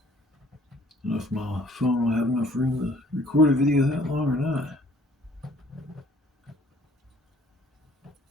don't know if my phone will have enough room to record a video that long or not.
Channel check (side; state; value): both; normal; correlation 0.57